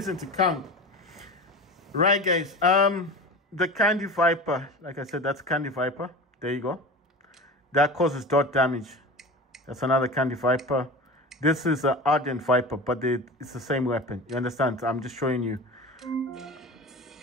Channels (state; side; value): normal; both; correlation 0.32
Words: to count. Right, guys. The Candy Viper, like I said, that's Candy Viper. There you go. That causes dot damage. That's another Candy Viper. This is an Ardent Viper, but it's the same weapon. You understand? I'm just showing you.